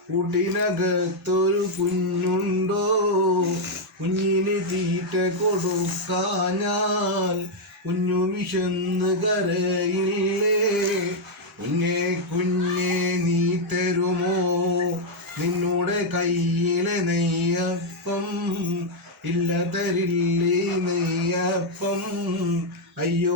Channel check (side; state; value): both; normal; correlation 0.00